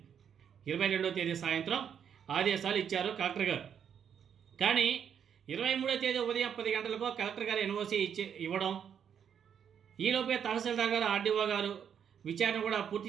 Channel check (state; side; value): quieter; left; 8.2 dB